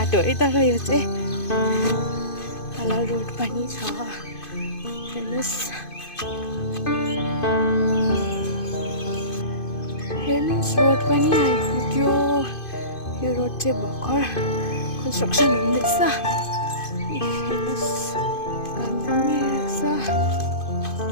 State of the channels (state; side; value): late; right; 2.5 ms